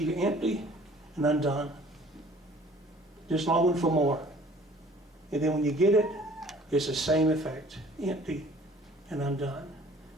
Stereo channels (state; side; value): normal; both; correlation 0.52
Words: empty and undone. Just longing for more. And then when you get it, it's the same effect. Empty and undone.